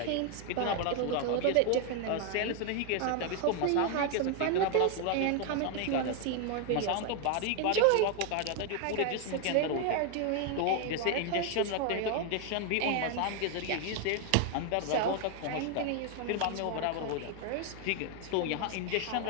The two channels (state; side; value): different; both; correlation 0.01